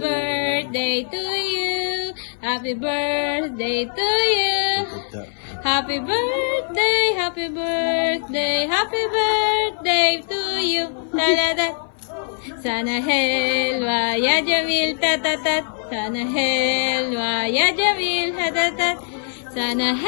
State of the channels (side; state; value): right; silent; 57 dB below the other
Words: to you. Happy birthday to you. Happy birthday, happy birthday, happy birthday to you. La la la. Sana helwa ya Jamil tatatat. Sana helwa ya Jamil tatatat. Sana